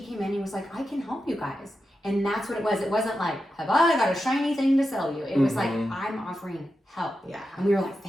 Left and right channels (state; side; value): normal; both; correlation 0.89